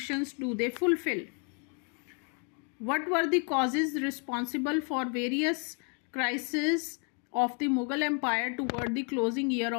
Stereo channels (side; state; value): right; quieter; 38.5 dB